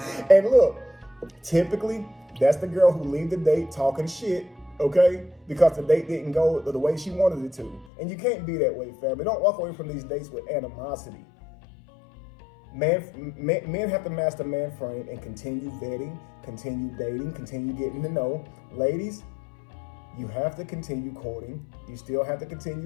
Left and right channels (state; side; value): drops out; right; at 7.9 s